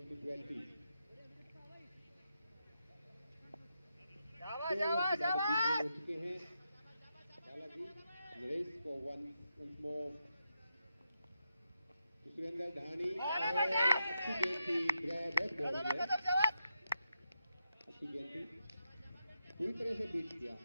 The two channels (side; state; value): both; inverted; correlation -0.85